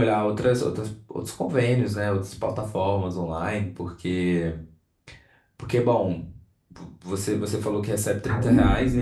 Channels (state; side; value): identical; both; correlation 1.00